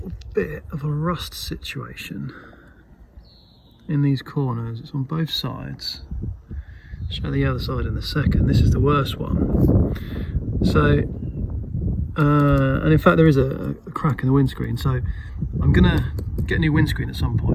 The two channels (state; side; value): identical; both; correlation 1.00